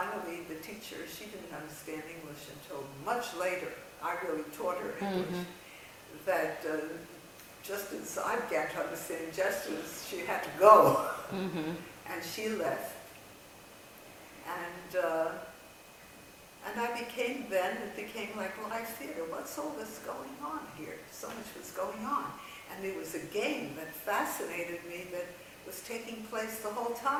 the teacher, she didn't understand English until much later. I really taught her English. That just as I began to understand gestures, she had to go. And she left. And I became then, it became like live theater. What's all this going on here? So much was going on. And there was a game that fascinated me that was taking place the whole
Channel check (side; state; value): both; identical; correlation 1.00